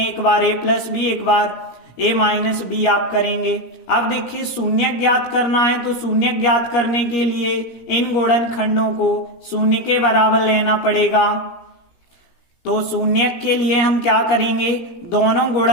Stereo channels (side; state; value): right; late; 17 ms